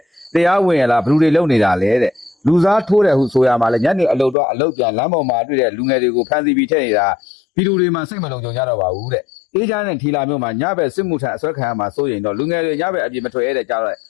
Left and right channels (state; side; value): drops out; right; at 4.4 s